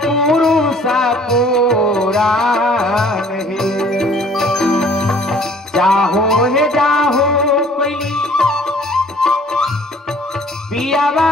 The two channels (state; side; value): normal; both; correlation 0.54